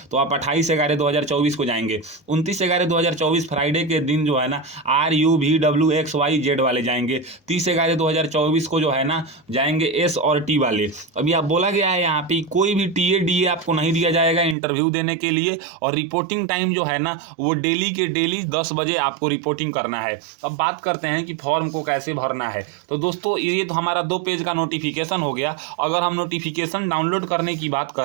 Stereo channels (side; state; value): left; drops out; at 14.6 s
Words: तो आप 28/11/2024 को जाएंगे। 29/11/2024 फ्राइडे के दिन जो है ना RUVWXYZ वाले जाएंगे। 30/11/2024 को जो है ना जाएंगे S और T वाले। अभी आप बोला गया है यहाँ पे कोई भी TA DA आपको नहीं दिया जाएगा इंटरव्यू देने के लिए, और रिपोर्टिंग टाइम जो है ना वो डेली के डेली 10 बजे आपको रिपोर्टिंग करना है। अब बात करते हैं कि फॉर्म को कैसे भरना है। तो दोस्तों ये तो हमारा 2 पेज का नोटिफिकेशन हो गया। अगर हम नोटिफिकेशन डाउनलोड करने की बात